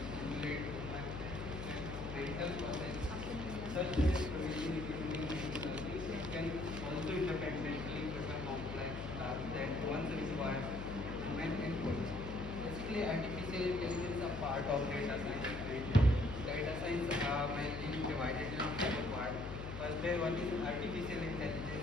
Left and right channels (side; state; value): left; noise; hum, 8 dB below the sound